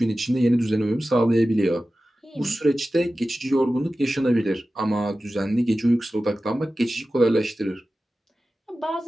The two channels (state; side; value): normal; both; correlation 0.95